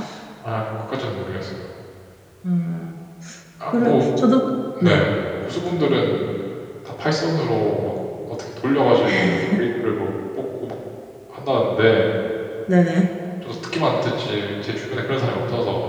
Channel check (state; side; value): identical; both; correlation 1.00